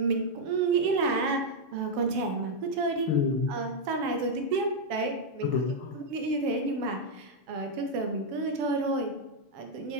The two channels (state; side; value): late; left; 7.3 ms